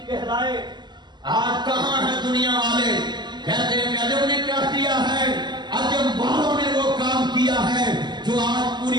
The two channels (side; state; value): left; late; 0.21 ms